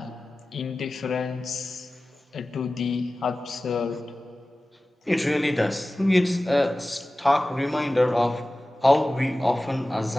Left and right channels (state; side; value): normal; both; correlation 0.96